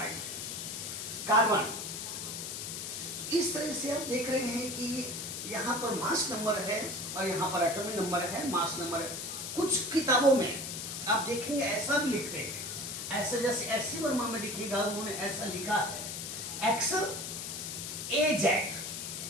है। Carbon, इस तरह से आप देख रहे हैं कि यहाँ पर मास नंबर है और यहाँ पर एटॉमिक नंबर है, मास नंबर है। कुछ किताबों में आप देखेंगे ऐसा भी लिखते हैं, ऐसा जैसे एस.सी. वर्मा में देखिएगा उन्होंने ऐसा लिखा है एक्सल AZ,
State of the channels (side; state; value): left; noise; hiss, 6 dB below the sound